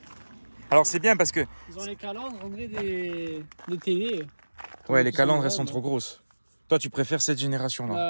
Alors c'est bien parce que... Ils ont les calandres, on dirait des télés. Ouais, les calandres, elles sont trop grosses. Toi, tu préfères cette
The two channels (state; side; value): inverted; both; correlation -1.00